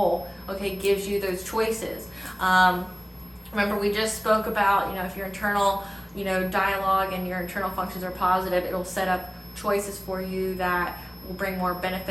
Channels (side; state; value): both; identical; correlation 1.00